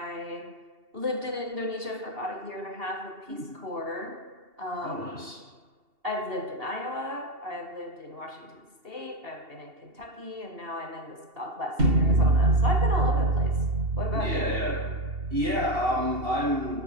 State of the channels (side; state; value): left; late; 2.7 ms